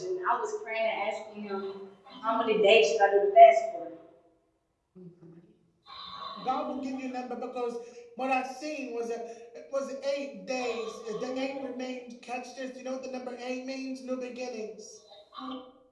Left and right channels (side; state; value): both; identical; correlation 1.00